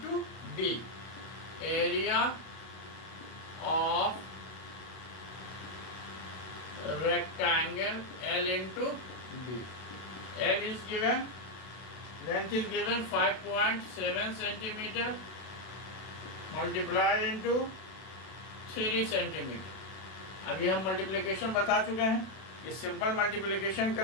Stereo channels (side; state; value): right; late; 32 ms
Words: B. Area of rectangle L into B. L is given, length is given 5.7 centimeter, multiply into 3 centimeter. अभी हम मल्टीप्लिकेशन बता चुके हैं, ये सिंपल मल्टीप्लिकेशन